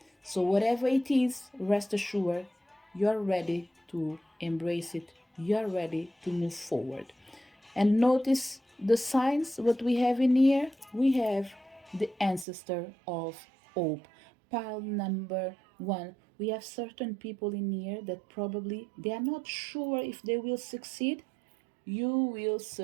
So whatever it is, rest assured, you're ready to embrace it. You're ready to move forward. And notice the signs, what we have in here. We have the ancestor of hope. Pile number one. We have certain people in here that probably they are not sure if they will succeed. You will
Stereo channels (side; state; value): left; drops out; at 12.5 s